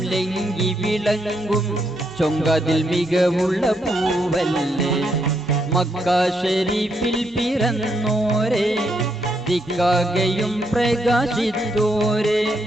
ലംഘി വിളങ്ങും ചൊങ്കതിൽ മികവുള്ള പൂവല്ലേ. മക്ക ഷരീഫിൽ പിറന്നോരേ ദിക്കാകയും പ്രകാശിത്തോരേ.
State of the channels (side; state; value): both; normal; correlation 0.77